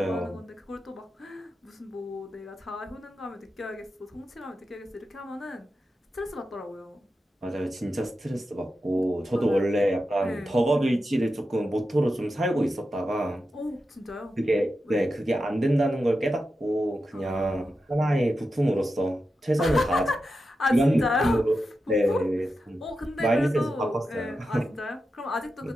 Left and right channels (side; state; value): both; normal; correlation 0.90